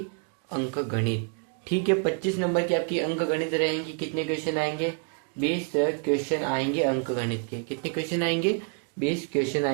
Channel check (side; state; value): left; quieter; 39.8 dB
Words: अंक गणित। ठीक है, 25 नंबर की आपकी अंक गणित रहेंगी। कितने क्वेश्चन आएंगे? 20 क्वेश्चन आएंगे अंक गणित के। कितने क्वेश्चन आएंगे? 20 क्वेश्चन